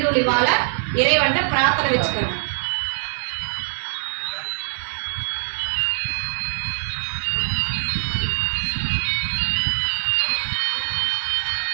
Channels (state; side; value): silent; left; digital silence